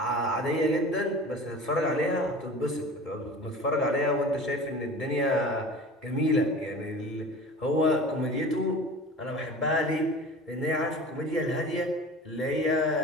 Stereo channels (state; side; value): normal; both; correlation 0.38